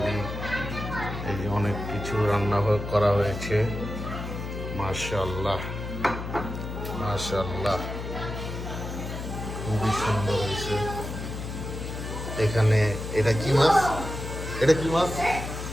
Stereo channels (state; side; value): noise; left; hum, 7 dB below the sound